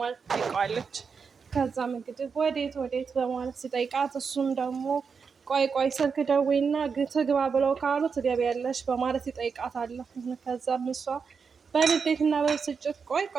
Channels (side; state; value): left; quieter; 5.7 dB